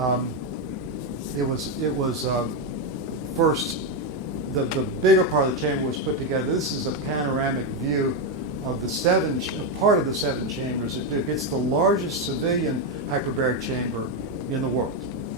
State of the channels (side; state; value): both; normal; correlation 0.06